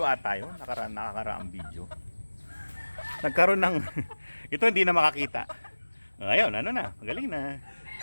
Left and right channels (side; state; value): both; inverted; correlation -1.00